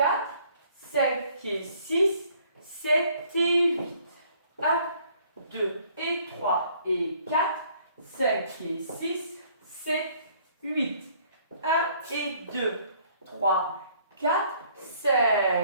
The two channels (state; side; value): inverted; both; correlation -0.60